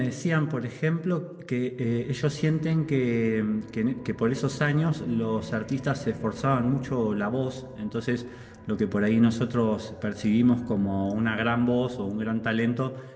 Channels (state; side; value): identical; both; correlation 1.00